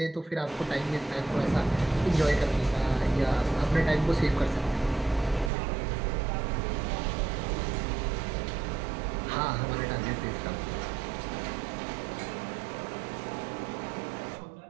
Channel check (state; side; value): drops out; left; at 5.5 s